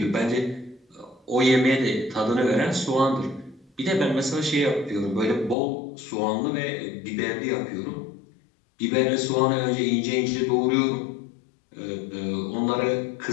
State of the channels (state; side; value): drops out; right; at 5.6 s